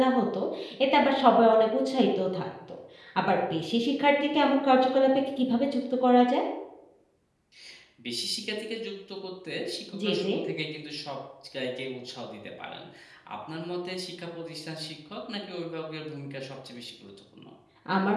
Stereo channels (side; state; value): both; identical; correlation 1.00